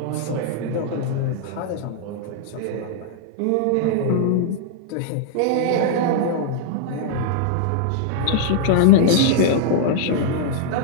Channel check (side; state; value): both; different; correlation -0.01